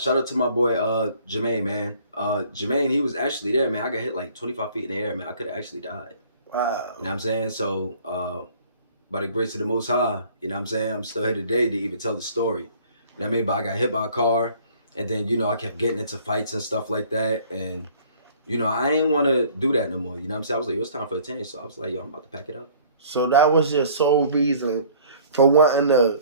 out to my boy Jermaine, man. Jermaine, he was actually there, man. I got hit like 25 feet in the air, man. I could have actually died. Wow. You know what I'm saying? So by the grace of the Most High, you know what I'm saying? I'm still here today to even tell the story. You know what I mean? But I got hit by a car, and then, you know, I kept getting into fights and stuff like that. And, you know, I ain't want to do that no more. You know what I'm saying? I was like, it's time for a change. So I was like, yo, I'm about to pack it up. So that was your sole reason for wanting to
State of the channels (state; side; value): inverted; both; correlation -0.54